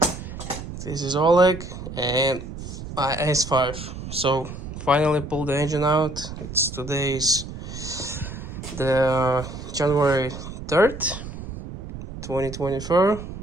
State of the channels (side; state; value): right; noise; rumble, 10 dB below the sound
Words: this is Oleg and my S5. So finally pulled the engine out. Today's the January 3rd, 2024.